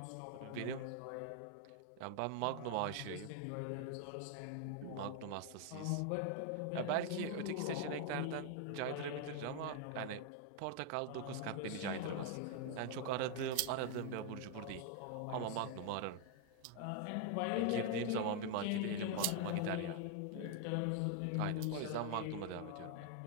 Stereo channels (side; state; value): both; different; correlation 0.00